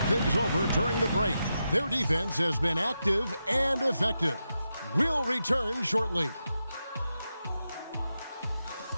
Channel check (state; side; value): inverted; both; correlation -0.88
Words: things over during the break. Their defense has been active and effective. We'll return shortly.